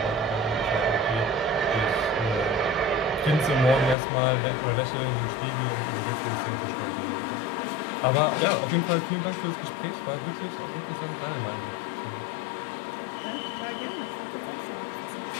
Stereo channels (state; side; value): drops out; right; at 4.0 s